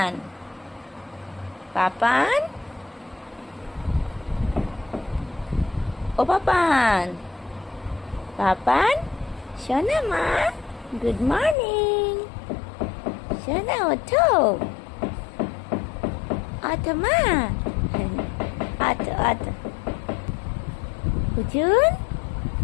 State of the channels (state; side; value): drops out; right; at 11.6 s